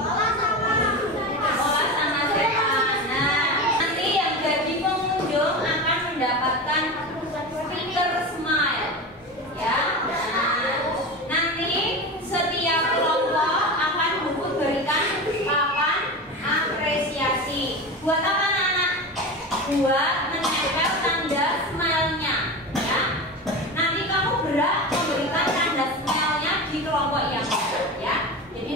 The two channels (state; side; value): normal; both; correlation 0.26